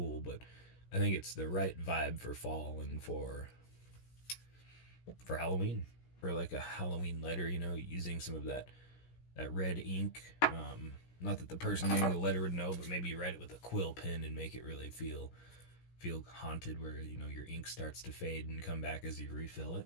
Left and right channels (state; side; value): late; right; 17 ms